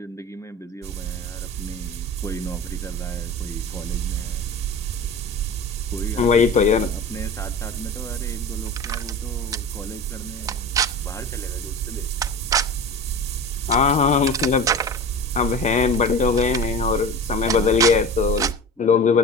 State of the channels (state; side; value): normal; both; correlation 0.33